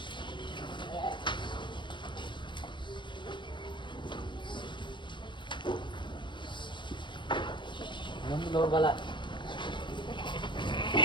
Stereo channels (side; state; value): right; late; 0.23 ms